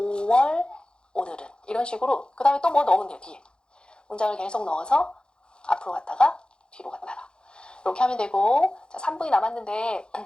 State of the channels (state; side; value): late; right; 0.049 ms